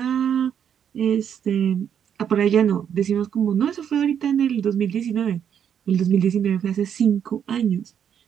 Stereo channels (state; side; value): quieter; left; 8.5 dB